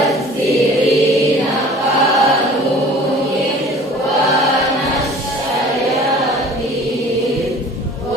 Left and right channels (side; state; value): both; normal; correlation 0.46